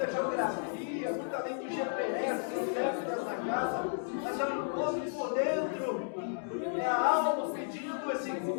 geografia, muito além do GPS dentro dessa casa, mas é um encontro por dentro, é a alma pedindo esse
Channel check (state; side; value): silent; right; digital silence